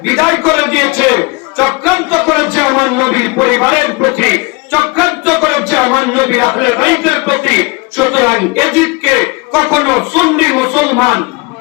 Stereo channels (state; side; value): quieter; right; 27.4 dB